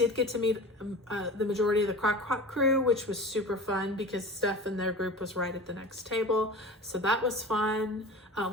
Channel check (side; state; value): both; normal; correlation 0.36